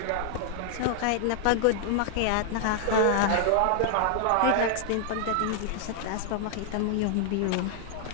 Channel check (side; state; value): both; different; correlation 0.00